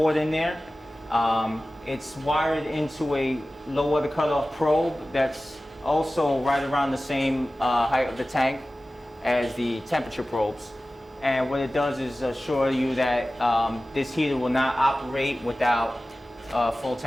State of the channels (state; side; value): normal; both; correlation 0.96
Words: in there. It's wired into a low water cutoff probe that's also right around the same height of the tank as the temperature probes. And what it does is assure you that this heater will not operate without a full